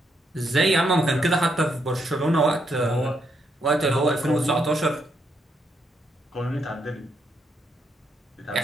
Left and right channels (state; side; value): normal; both; correlation 0.77